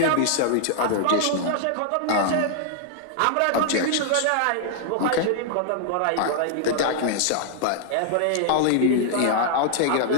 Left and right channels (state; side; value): different; both; correlation -0.01